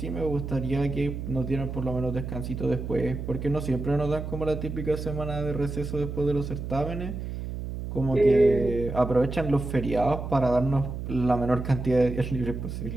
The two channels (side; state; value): right; noise; hum, 6 dB below the sound